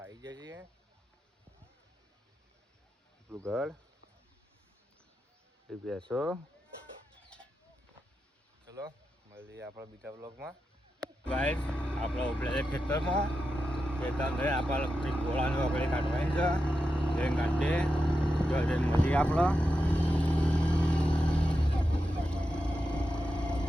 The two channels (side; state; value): both; normal; correlation 0.89